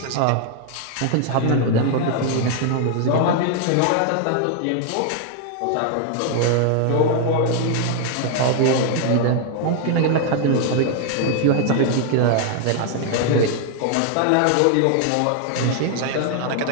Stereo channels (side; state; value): both; different; correlation 0.00